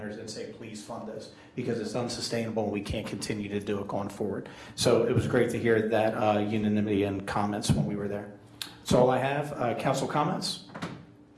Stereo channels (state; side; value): identical; both; correlation 1.00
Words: and say, please fund us, because it's unsustainable and we can't continue to do it going forward. So it was great to hear that unanimity and comments when we were there. That's all I have. Council comments?